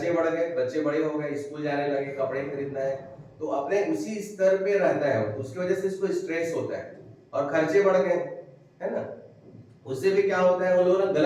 बढ़ गए, बच्चे बड़े हो गए, स्कूल जाने लगे, कपड़े खरीदना है, तो अपने उसी स्तर पे रहता है, उसकी वजह से इसको स्ट्रेस होता है और खर्चे बढ़ गए, है ना। उससे भी क्या होता है, वो लोग ना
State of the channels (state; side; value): identical; both; correlation 1.00